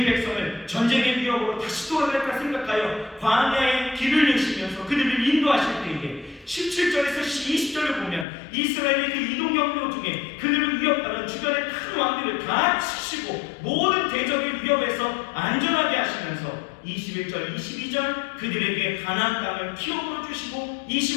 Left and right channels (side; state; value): right; drops out; at 8.2 s